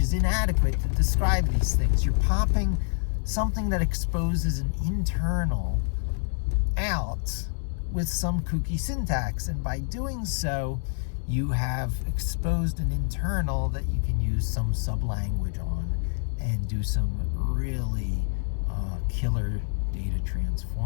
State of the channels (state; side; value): silent; right; 60 dB below the other